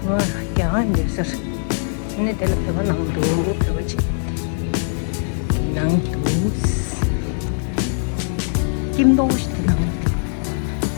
वाह क्या है ये सर इन्हें तेरा पे बना हम दो पे बचे नंग 김도 시대 나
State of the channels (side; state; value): right; silent; 65 dB below the other